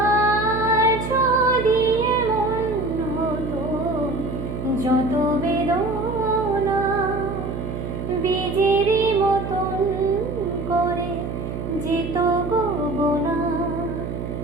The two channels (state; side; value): noise; right; hum, 5 dB below the sound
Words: যদি এমন হতো যত বেদনা বীজেরই মতন করে যেত গো বোনা।